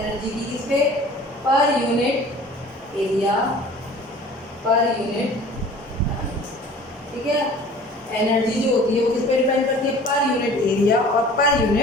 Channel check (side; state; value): both; normal; correlation 0.46